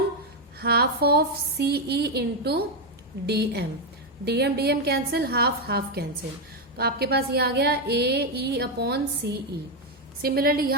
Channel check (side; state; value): left; noise; hum, 29 dB below the sound